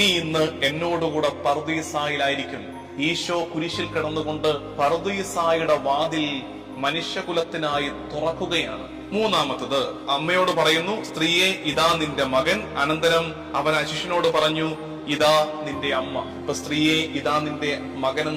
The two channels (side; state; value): both; identical; correlation 1.00